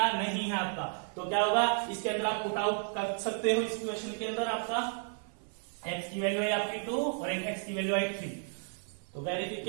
नहीं है आपका, तो क्या होगा इसके अंदर आप पुट आउट कर सकते हो। इस क्वेश्चन के अंदर आपका x की वैल्यू है आपकी 2 और एक x की वैल्यू है 3, तो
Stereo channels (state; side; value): silent; left; 56 dB below the other